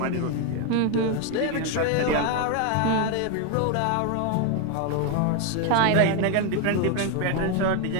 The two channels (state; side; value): different; both; correlation 0.01